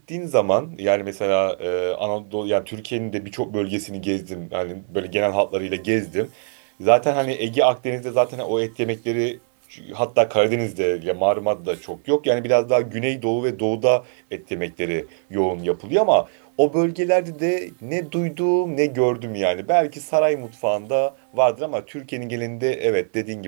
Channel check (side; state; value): left; silent; digital silence